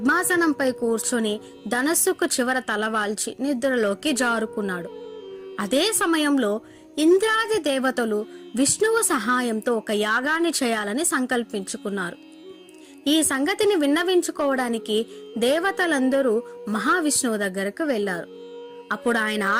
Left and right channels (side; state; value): both; identical; correlation 1.00